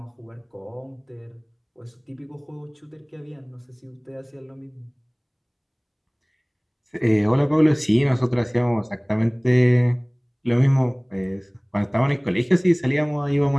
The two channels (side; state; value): both; identical; correlation 1.00